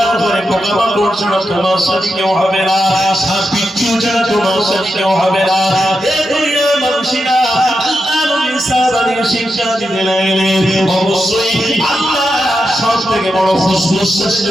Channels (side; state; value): both; normal; correlation 0.87